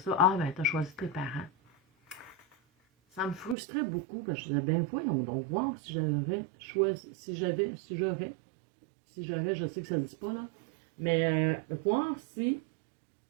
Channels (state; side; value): drops out; left; at 3.6 s